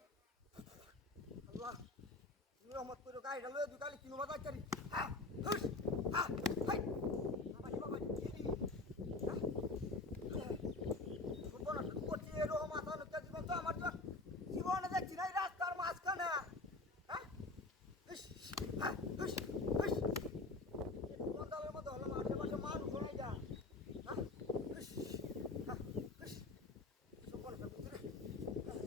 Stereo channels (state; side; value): quieter; right; 3.2 dB